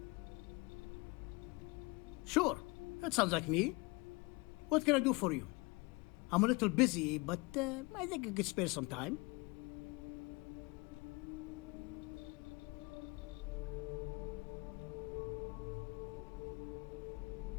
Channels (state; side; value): quieter; right; 26.5 dB